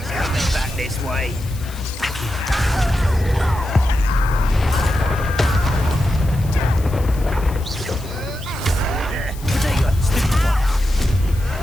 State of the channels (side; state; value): left; noise; hiss, 19 dB below the sound